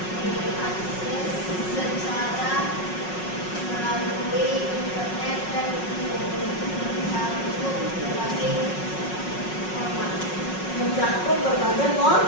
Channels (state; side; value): late; right; 5.4 ms